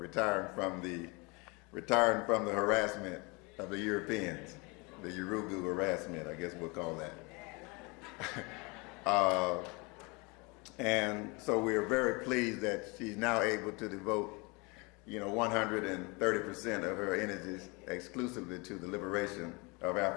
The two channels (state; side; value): quieter; right; 28.4 dB